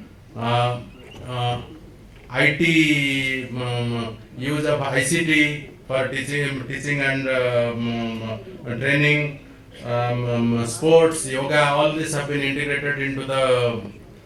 IT, use of ICT for teaching and training, sports, yoga, all this have been integrated into the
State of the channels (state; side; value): identical; both; correlation 1.00